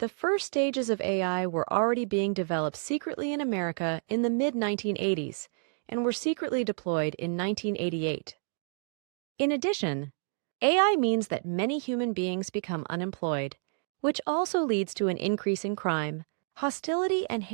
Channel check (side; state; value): left; silent; 58 dB below the other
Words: first stages of AI were already being developed secretly in America in the mid-1980s and were secretly deployed in 1988. In addition, AI means that many human beings become unemployed, which also leads to an increase in crime, hostility and